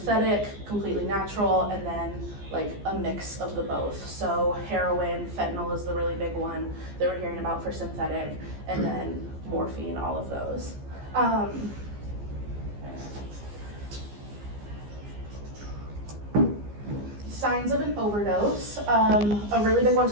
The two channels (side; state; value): left; late; 15 ms